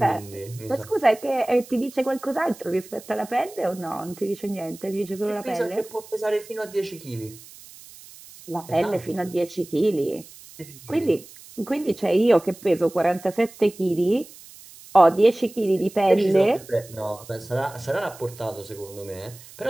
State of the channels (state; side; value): noise; right; hiss, 20 dB below the sound